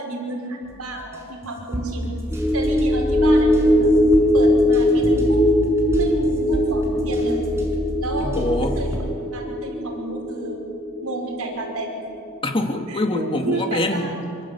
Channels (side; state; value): both; normal; correlation 0.68